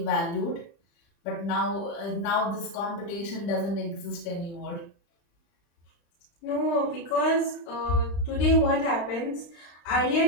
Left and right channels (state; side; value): late; right; 35 ms